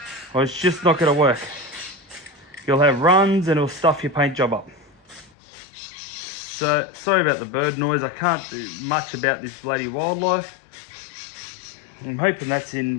or it's just not going to work. You'll have runs and it'll stuff your paint job up. So sorry about the bird noise. I can't do much about this bloody wildlife. I'm hoping that's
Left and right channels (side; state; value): right; drops out; at 5.3 s